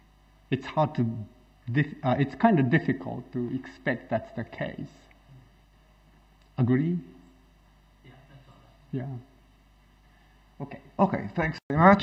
It's hard to, it's kind of difficult to expect that's the case. Agree? Yeah, that's all. Yeah. Okay. Okay, thanks very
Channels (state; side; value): identical; both; correlation 1.00